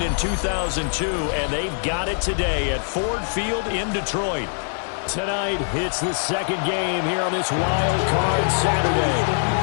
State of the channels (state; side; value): silent; right; digital silence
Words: in 2002, and they've got it today at Ford Field in Detroit. Tonight, it's the second game here on this Wild Card Saturday,